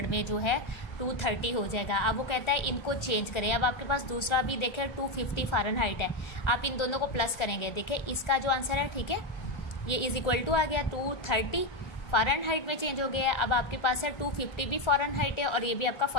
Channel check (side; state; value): right; late; 1.3 ms